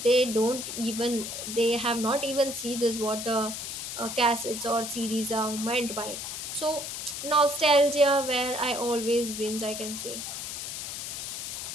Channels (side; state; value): left; noise; hiss, 6 dB below the sound